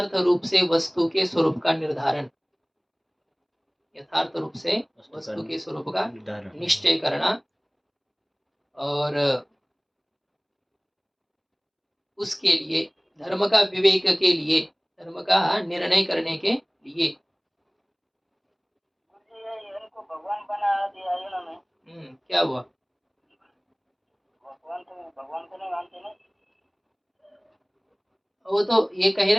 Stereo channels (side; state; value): both; identical; correlation 1.00